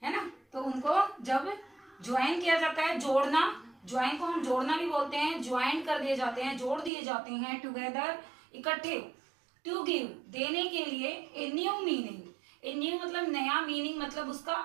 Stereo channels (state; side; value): drops out; left; at 6.9 s